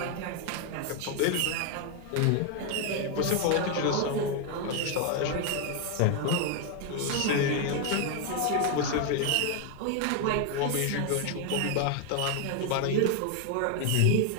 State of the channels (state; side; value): different; both; correlation 0.01